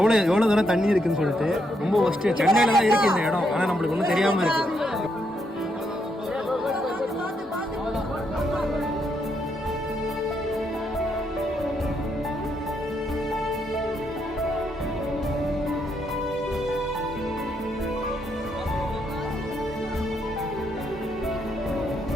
தூரம் தண்ணி இருக்குன்னு சொல்லிட்டு. ரொம்ப ஃபஸ்ட்டு சென்னையில் தான் இருக்குது இந்த இடம், ஆனால் நம்மளுக்கு ஒன்றும் தெரியாமல் இருக்குது.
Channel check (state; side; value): normal; both; correlation 0.77